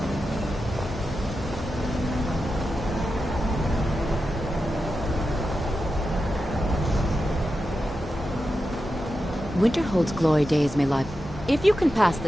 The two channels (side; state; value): both; normal; correlation 0.90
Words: Winterhold's glory days may lie. If you can pass